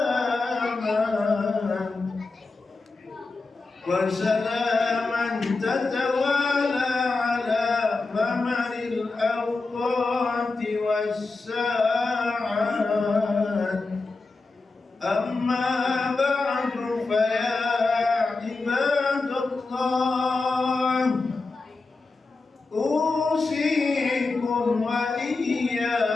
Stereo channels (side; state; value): right; quieter; 3.7 dB